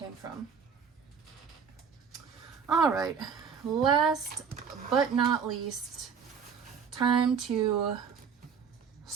from. All right, last but not least, time to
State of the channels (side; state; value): left; quieter; 6.6 dB